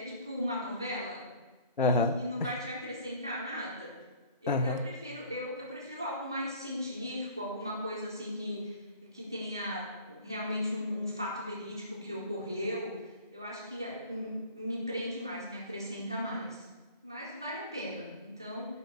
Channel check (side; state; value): both; inverted; correlation -0.48